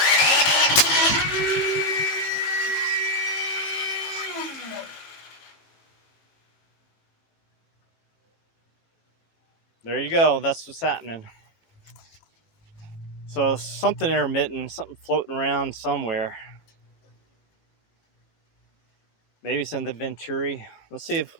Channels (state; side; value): late; right; 18 ms